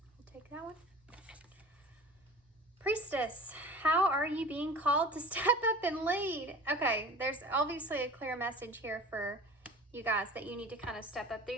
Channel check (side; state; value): both; normal; correlation 0.40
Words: we'll take that one. Priestess, how are you being called to step up and lead? Okay, there's obviously a clear message here for you guys that you need to kind of step up.